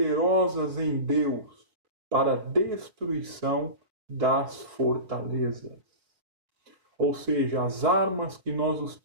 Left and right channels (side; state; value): left; late; 4.2 ms